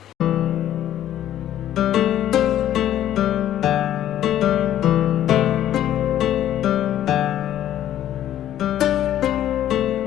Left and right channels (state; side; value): quieter; right; 11.8 dB